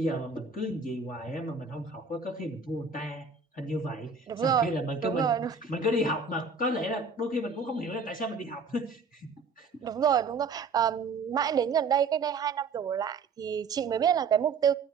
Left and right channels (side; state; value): left; quieter; 4.7 dB